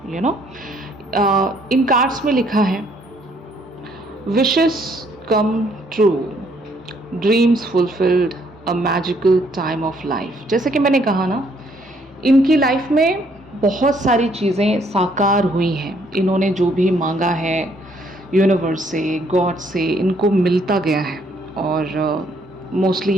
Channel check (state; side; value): normal; both; correlation 0.67